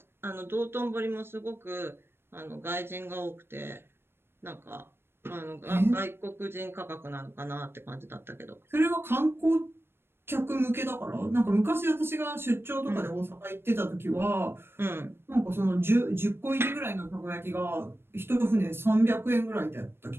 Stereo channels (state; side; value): late; left; 0.11 ms